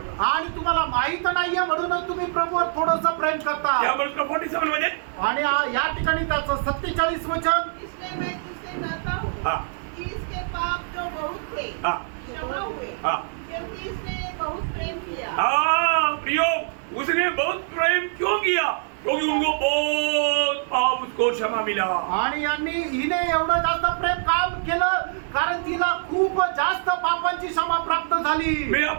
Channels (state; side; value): silent; left; digital silence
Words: आणि तुम्हाला माहित नाहीये म्हणूनच तुम्ही प्रभूवर थोडंसं प्रेम करता. यावर उसका 47 मध्ये आणि या ठिकाणी त्याचं 47 वचन. इसलिए मैं तुझसे कहता हूँ हाँ. कि इसके पाप जो बहुत थे हाँ. क्षमा हुए, हाँ. क्योंकि इसने बहुत प्रेम किया. हाँ प्रियो, उसने बहुत प्रेम क्यों किया? क्योंकि उनको बहुत पाप उसको क्षमा मिला। आणि हिने एवढं जास्त प्रेम काम केलं कारण तिला खूप जास्त पापांची क्षमा प्राप्त झाली. मैं